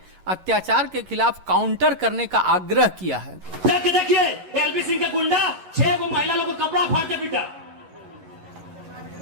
अत्याचार के खिलाफ काउंटर करने का आग्रह किया है। देखिए LV सिंह का गुंडा 6 को महिला लोगों को कपड़ा फाड़ के पीटा।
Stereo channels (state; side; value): late; left; 11 ms